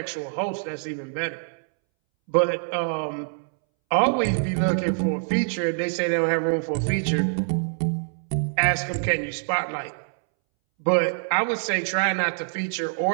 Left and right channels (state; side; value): silent; left; 62 dB below the other